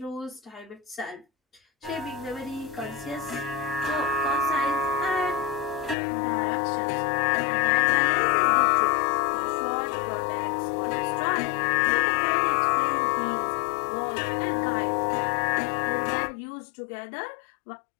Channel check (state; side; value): drops out; right; at 6.0 s